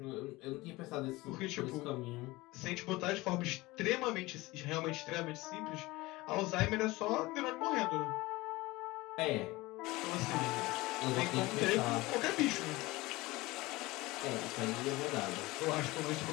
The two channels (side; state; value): right; quieter; 20.7 dB